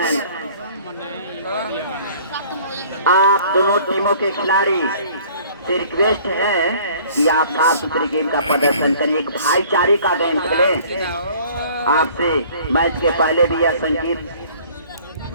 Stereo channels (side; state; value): both; inverted; correlation -0.52